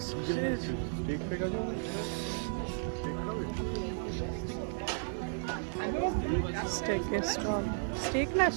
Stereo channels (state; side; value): silent; left; digital silence